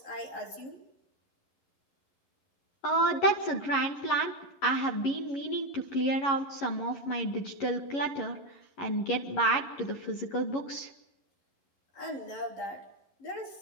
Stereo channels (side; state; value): right; late; 11 ms